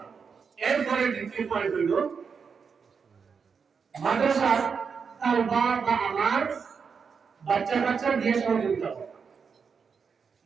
এরপরে দ্বিতীয় পয়েন্ট হইল মাদ্রাসার তালবা বা আমার বাচ্চা দিয়ে সহযোগিতা করে।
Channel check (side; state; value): left; quieter; 5.9 dB